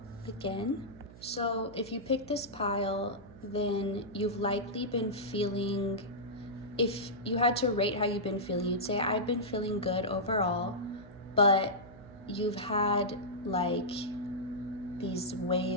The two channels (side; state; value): right; noise; hum, 18 dB below the sound